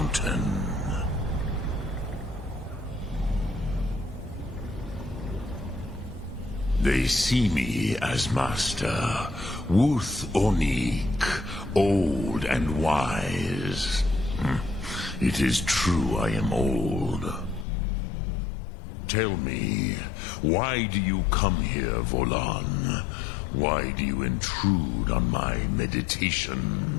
They see me as master, Wuth Onik, old and wise. It is true I am old. Tell me, why do you come here, Volan? Why do you intrude on my meditation?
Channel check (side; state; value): right; drops out; at 17.7 s